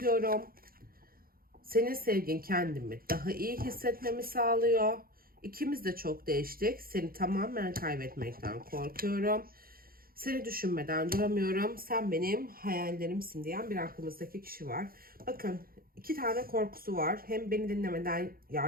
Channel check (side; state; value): left; late; 0.43 ms